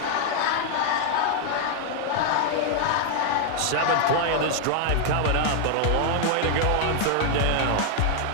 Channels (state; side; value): different; both; correlation 0.00